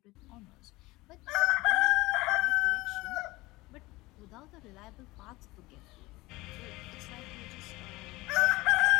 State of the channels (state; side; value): quieter; right; 20.8 dB